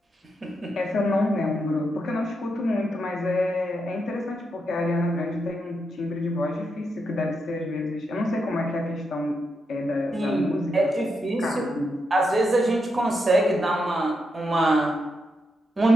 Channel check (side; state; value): both; normal; correlation 0.83